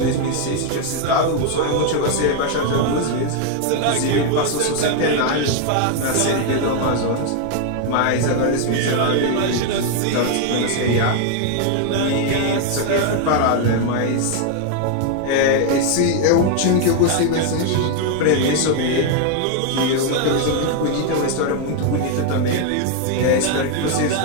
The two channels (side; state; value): both; different; correlation 0.00